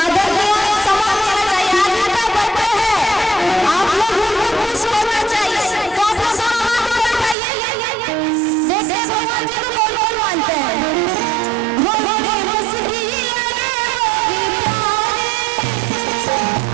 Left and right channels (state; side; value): drops out; left; at 7.4 s